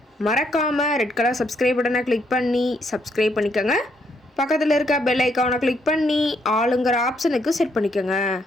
மறக்காமல் ரெட் கலர் சப்ஸ்கிரைப் பட்டனை கிளிக் பண்ணி சப்ஸ்கிரைப் பண்ணிக்கோங்க. பக்கத்தில் இருக்க பெல் ஐக்கானை கிளிக் பண்ணி ஆளுங்கிற ஆப்ஷனுக்கு செட் பண்ணிக்கோங்க.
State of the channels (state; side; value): normal; both; correlation 0.74